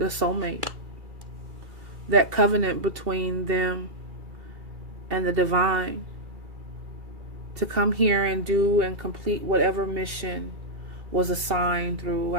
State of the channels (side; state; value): left; late; 2.7 ms